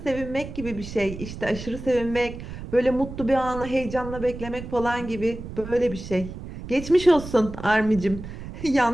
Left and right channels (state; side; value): noise; right; rumble, 11 dB below the sound